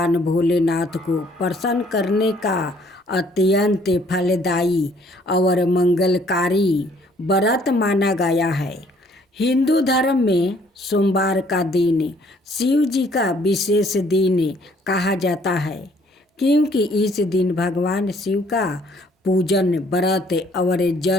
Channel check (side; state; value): both; normal; correlation 0.62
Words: भोलेनाथ को प्रसन्न करने का अत्यंत फलदायी और मंगलकारी व्रत माना गया है। हिंदू धर्म में सोमवार का दिन शिव जी का विशेष दिन कहा जाता है, क्योंकि इस दिन भगवान शिव का पूजन, व्रत और